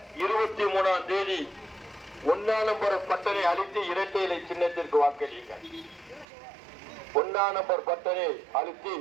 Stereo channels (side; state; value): left; drops out; at 6.2 s